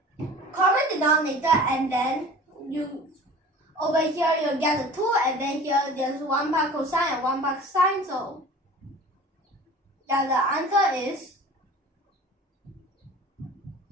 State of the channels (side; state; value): both; normal; correlation 0.42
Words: common denominator and then over here you'll get a 2 and then here there's 1 part cosine and 1 part sine, so yeah, the answer is